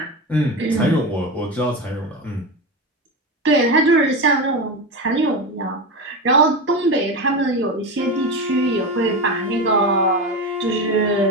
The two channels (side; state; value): both; normal; correlation 0.20